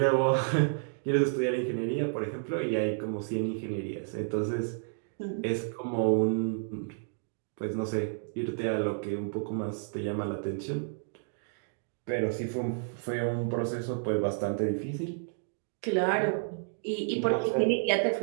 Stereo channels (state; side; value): silent; left; digital silence